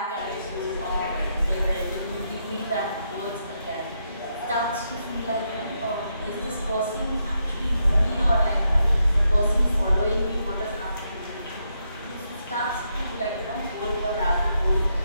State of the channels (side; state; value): both; inverted; correlation -0.80